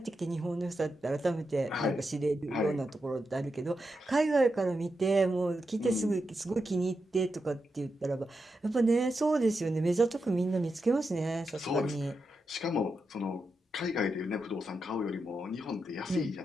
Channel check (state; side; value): normal; both; correlation 0.87